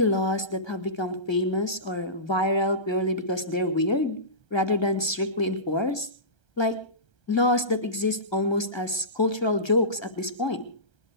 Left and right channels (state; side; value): late; right; 1.3 ms